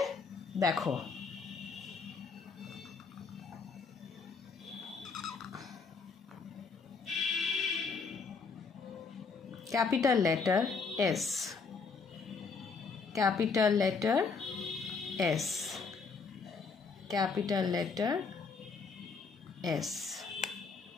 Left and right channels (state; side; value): quieter; right; 4.9 dB